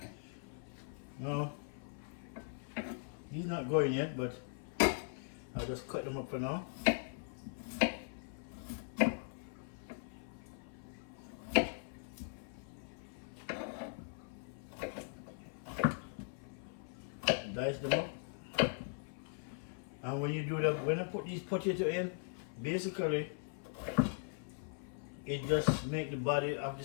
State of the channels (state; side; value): silent; right; 51 dB below the other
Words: No, he's not going yet, but I'll just cut them up for now. dice them up. And when you do that, when I put these potato in, basically it just make the body of